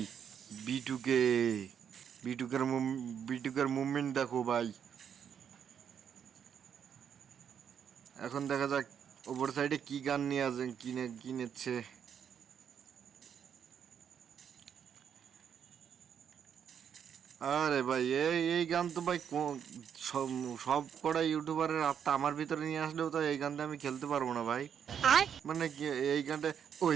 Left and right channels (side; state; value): left; quieter; 8.1 dB